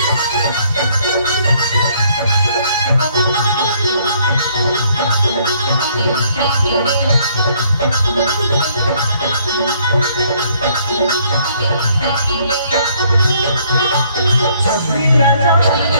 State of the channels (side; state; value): both; inverted; correlation -0.64